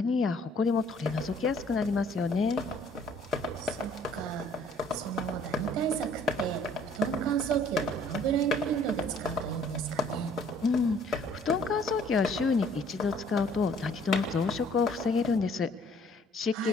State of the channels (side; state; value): both; normal; correlation 0.58